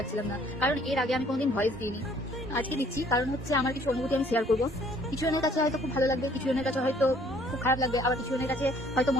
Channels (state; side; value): normal; both; correlation 0.60